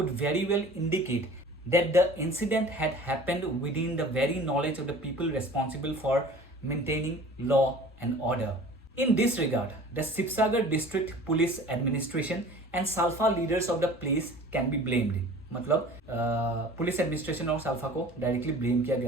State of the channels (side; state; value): both; normal; correlation 0.44